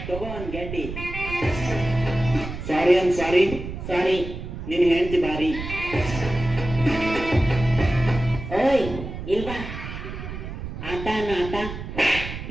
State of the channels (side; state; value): right; noise; rumble, 9 dB below the sound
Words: ತಗೋ ಅನ್ ಗೆಡ್ಡಿ ಸಾರಿ ಅನ್ ಸಾರಿ ಸಾರಿ ನಿನ್ ಹೆಂಡತಿ ಬಾರಿ ಓಯ್ ಇಲ್ವಾ ಆಟ ಅನ್ನ ಆಟ